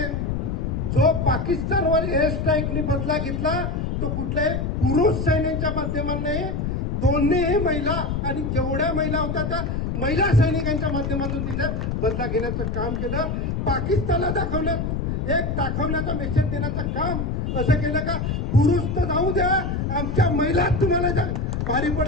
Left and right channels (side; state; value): left; noise; rumble, 1 dB below the sound